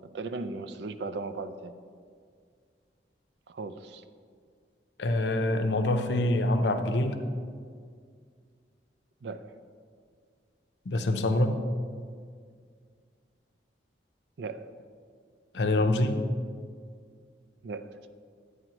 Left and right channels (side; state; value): both; normal; correlation 0.60